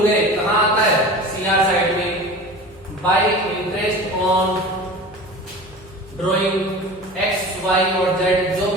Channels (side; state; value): left; noise; hum, 24 dB below the sound